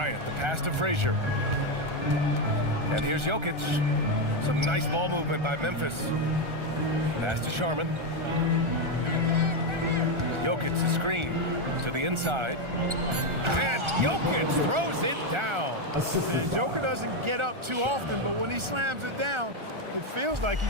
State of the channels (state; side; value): late; left; 1.4 ms